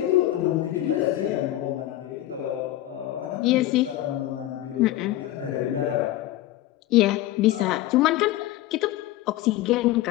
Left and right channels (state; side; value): quieter; right; 14.8 dB